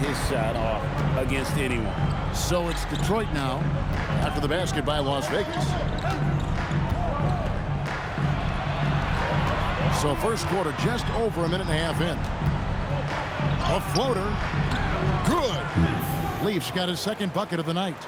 shot off against anyone. So it's Detroit now after the basket by Las Vegas. So first quarter just over a minute and a half in. A floater. Good. Leafs got his second bucket of the night.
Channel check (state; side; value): identical; both; correlation 1.00